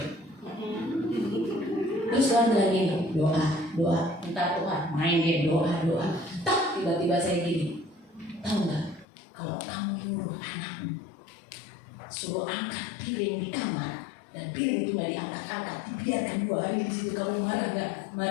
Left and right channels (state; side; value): drops out; right; at 9.1 s